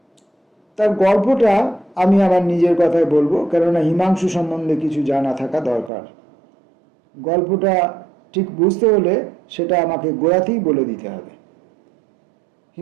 তার গল্পটা আমি আমার নিজের কথায় বলবো, কেননা হিমাংশু সম্বন্ধে কিছু জানা থাকা দরকার। গল্পটা ঠিক বুঝতে হলে সেটা আমাকে গোড়াতেই বলে দিতে হবে।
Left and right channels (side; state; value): left; drops out; at 5.9 s